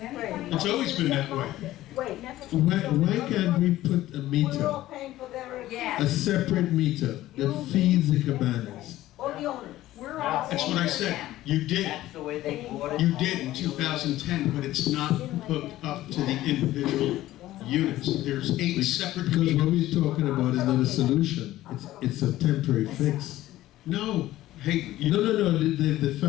anybody? it's always been that way. Wait. Why can't we put a We're all meter, paying for their. Yeah. a separate meter that feeds the cabanas? All the owners. We're all. That's what I said. You did. That's the way they bought it. You did in 2010, but it's not hooked up to the individual units. There's 8 separate Because what meters. we're talking about is not a solution, it's a temporary fix. No, hey, you. No, the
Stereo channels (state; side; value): quieter; right; 15.2 dB